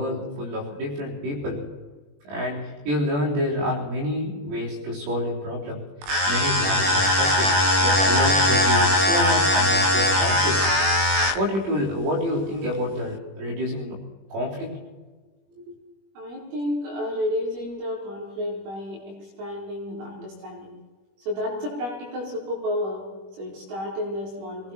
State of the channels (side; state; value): left; late; 21 ms